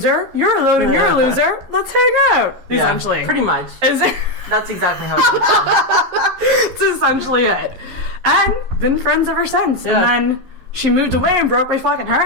You're alone and you're a loser. Let's hang out. Yeah, Essentially. pretty much. Is it? That's exactly how it went. That's essentially it. And been friends ever since. Yeah. And then she moved away and broke my fucking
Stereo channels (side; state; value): left; late; 11 ms